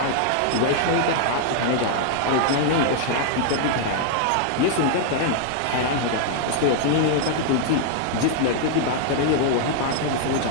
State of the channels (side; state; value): both; different; correlation 0.00